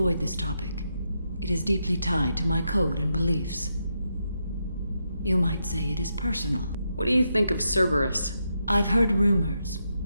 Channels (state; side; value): inverted; both; correlation -0.83